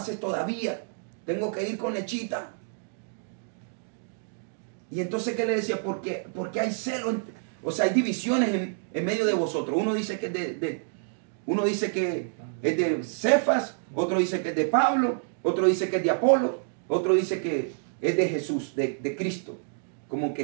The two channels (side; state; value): left; silent; digital silence